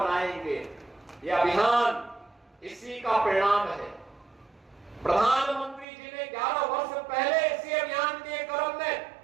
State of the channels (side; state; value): left; drops out; at 5.9 s